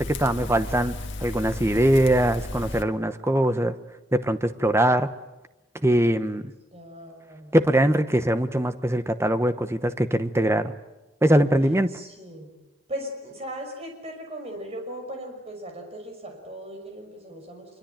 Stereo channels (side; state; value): both; normal; correlation 0.82